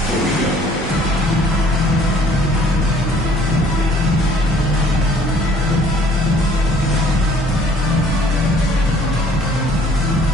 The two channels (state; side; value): normal; both; correlation 0.57